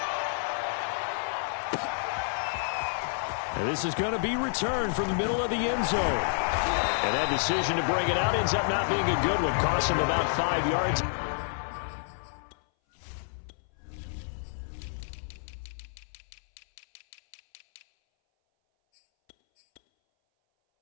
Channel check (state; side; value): silent; right; 58 dB below the other